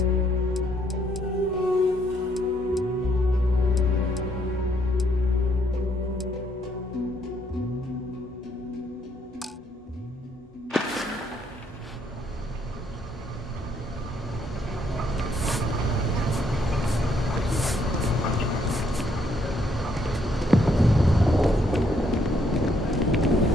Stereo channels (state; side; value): normal; both; correlation 0.71